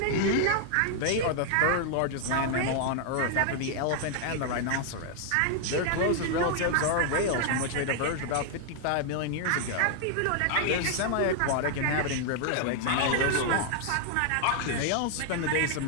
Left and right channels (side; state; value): both; different; correlation 0.00